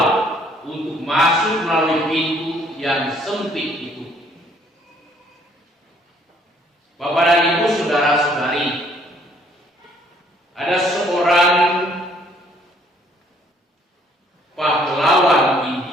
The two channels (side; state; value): both; normal; correlation 0.63